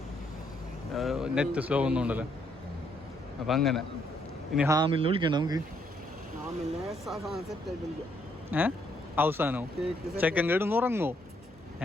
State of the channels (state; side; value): normal; both; correlation 0.72